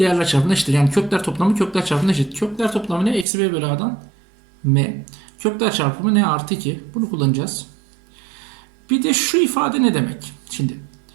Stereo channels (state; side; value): drops out; left; at 3.2 s